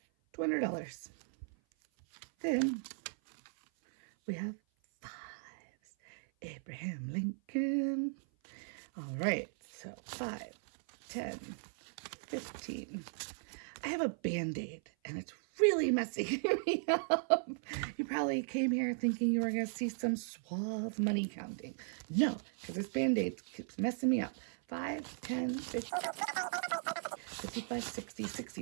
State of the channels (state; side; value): silent; left; 53 dB below the other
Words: Then we have fives. Abraham Lincoln. All right, so 5, 10, 15. I have a Band-Aid, and it's really messing me up. You probably came here thinking you were going to see some suave money counting. No, because this Band-Aid keeps messing me up. 5, 10, 15, 55, 60,